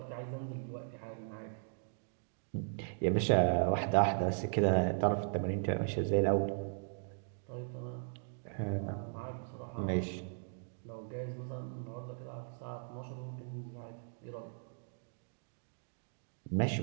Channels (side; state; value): left; silent; digital silence